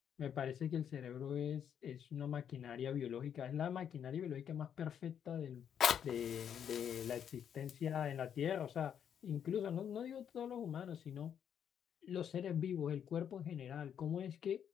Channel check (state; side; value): quieter; right; 8.6 dB